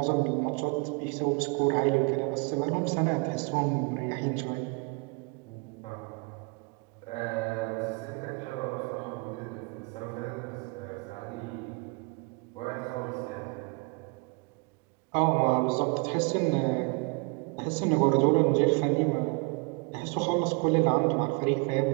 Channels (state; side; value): quieter; left; 31.8 dB